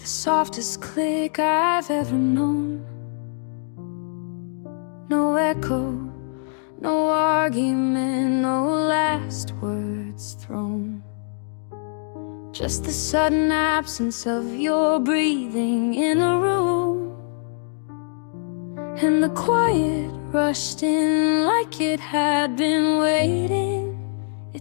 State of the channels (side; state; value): right; silent; digital silence